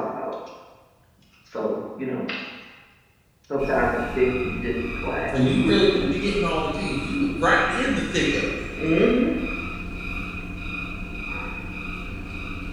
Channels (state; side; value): identical; both; correlation 1.00